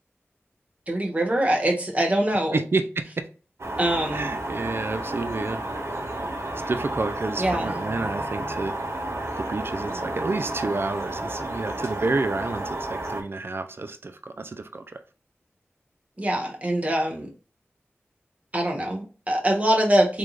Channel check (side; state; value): both; normal; correlation 0.85